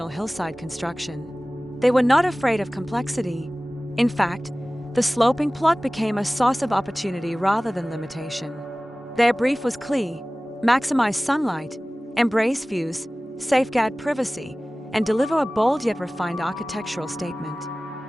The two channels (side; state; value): both; normal; correlation 0.98